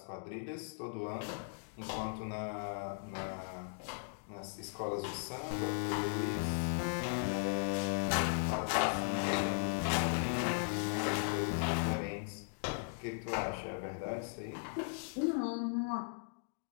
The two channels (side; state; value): right; silent; digital silence